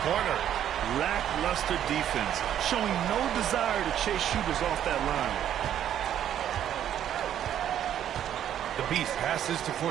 Lackluster defense, showing no desire to chase shooters off that line. The Beast passes to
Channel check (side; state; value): left; quieter; 10.5 dB